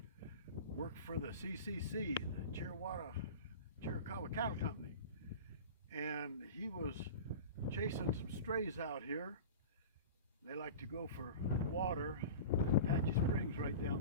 worked for the CCC, the Chiricahua Cattle Company, and he was chasing some strays out here. They like to go for water, Apache Springs right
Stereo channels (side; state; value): both; inverted; correlation -0.34